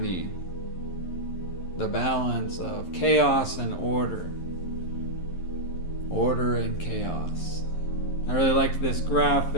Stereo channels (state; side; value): late; right; 11 ms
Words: the balance of chaos and order and chaos. I really liked this